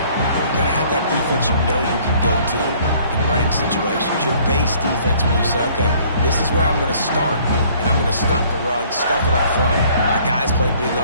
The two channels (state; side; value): inverted; both; correlation -0.58